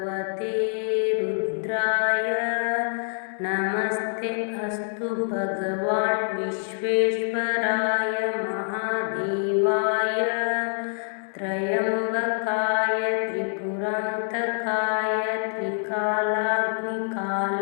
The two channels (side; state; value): right; silent; digital silence